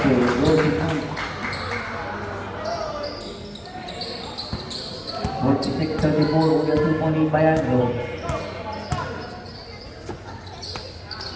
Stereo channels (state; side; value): identical; both; correlation 1.00